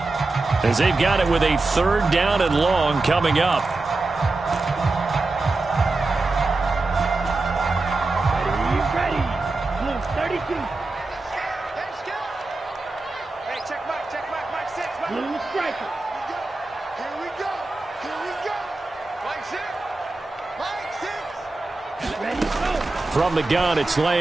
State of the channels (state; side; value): quieter; left; 3.3 dB